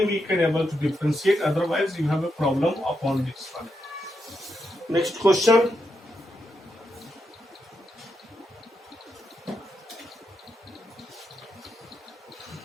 we can able to differentiate. Otherwise, you have a problem upon this one. Next question.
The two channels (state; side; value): normal; both; correlation 0.83